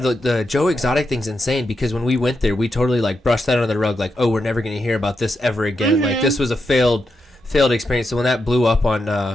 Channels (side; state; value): both; normal; correlation 0.85